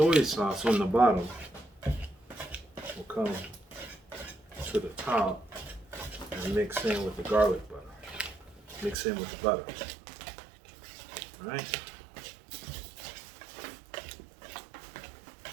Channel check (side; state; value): left; drops out; at 9.0 s